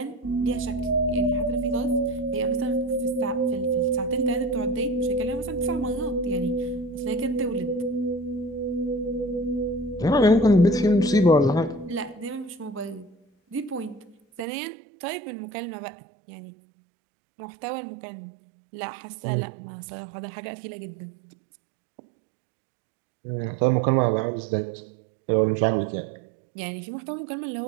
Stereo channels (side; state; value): left; drops out; at 14.5 s